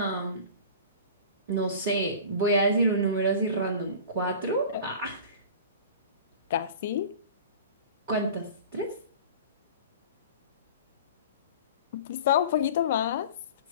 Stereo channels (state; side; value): inverted; both; correlation -0.38